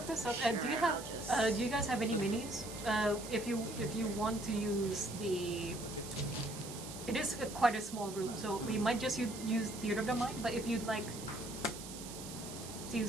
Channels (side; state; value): right; noise; hiss, 11 dB below the sound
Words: of, do you have? Do you guys have any minis? If you want to use the, it is quite a small room, so we might just use Theater of the Mind. But if you'd like to